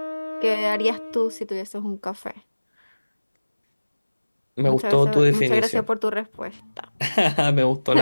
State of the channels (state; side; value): inverted; both; correlation -1.00